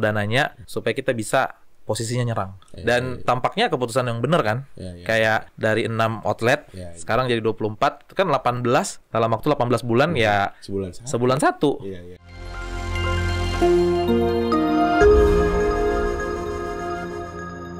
dananya supaya kita bisa posisinya nyerang. Dan tampaknya keputusan yang benar kan. Kayak dari 6 outlet sekarang jadi 24, itu kan 18 dalam waktu 18 bulan ya sebulan satu.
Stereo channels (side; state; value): both; identical; correlation 1.00